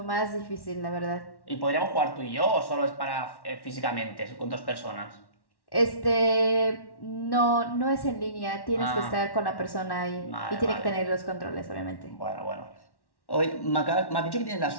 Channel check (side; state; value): right; late; 1.1 ms